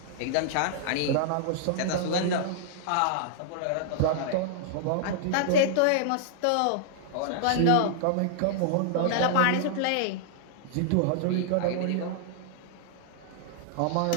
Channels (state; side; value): different; both; correlation -0.01